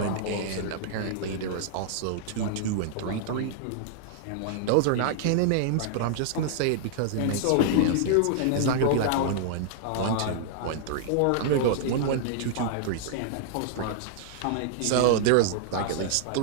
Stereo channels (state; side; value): different; both; correlation -0.01